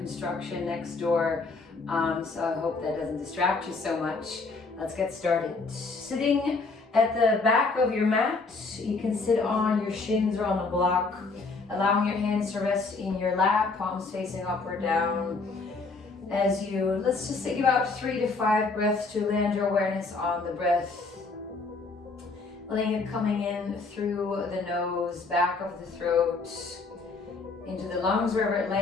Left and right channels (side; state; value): right; quieter; 3.9 dB